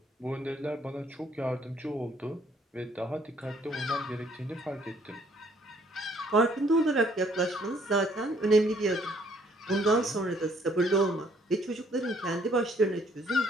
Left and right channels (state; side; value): normal; both; correlation 0.64